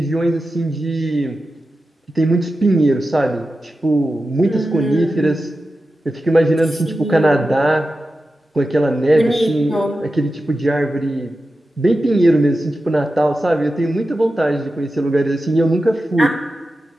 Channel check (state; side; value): normal; both; correlation 0.92